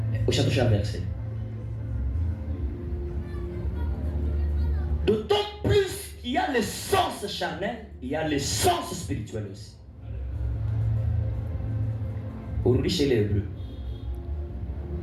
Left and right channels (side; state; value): both; identical; correlation 1.00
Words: Au chapitre verset. D'autant plus il y a le sens charnel, il y a le sens spirituel aussi. Aujourd'hui chez les Hébreux.